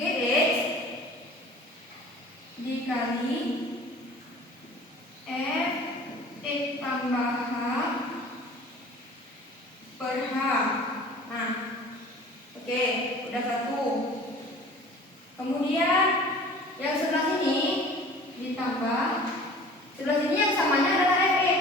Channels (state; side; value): normal; both; correlation 0.45